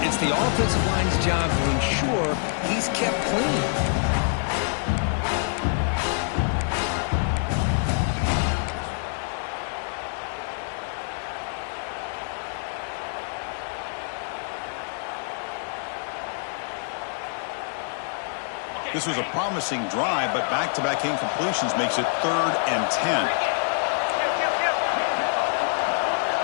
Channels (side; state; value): right; silent; 61 dB below the other